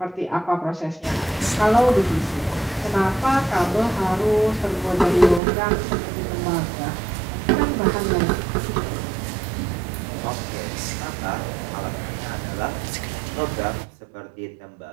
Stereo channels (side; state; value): left; drops out; at 5.4 s